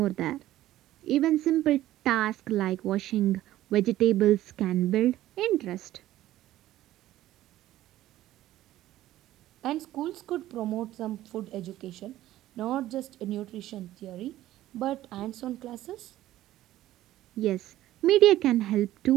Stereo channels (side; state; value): left; quieter; 14.4 dB